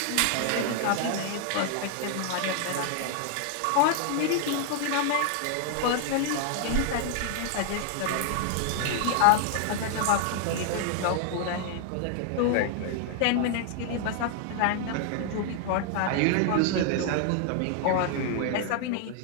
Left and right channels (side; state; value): both; different; correlation 0.00